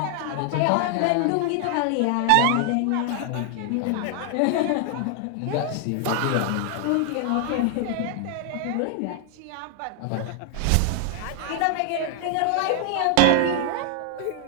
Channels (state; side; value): different; both; correlation 0.00